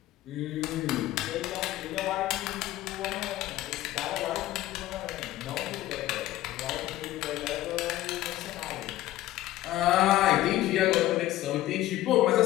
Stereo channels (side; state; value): right; quieter; 15.2 dB